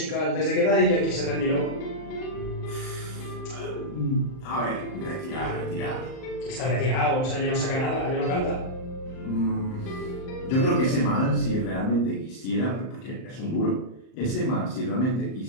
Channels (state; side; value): late; right; 39 ms